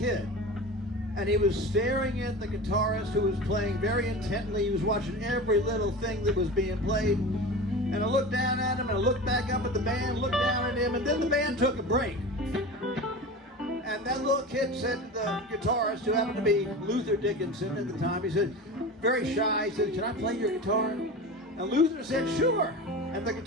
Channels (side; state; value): both; normal; correlation 0.31